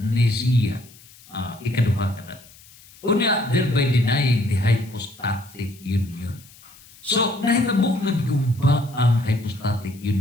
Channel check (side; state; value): left; noise; hiss, 24 dB below the sound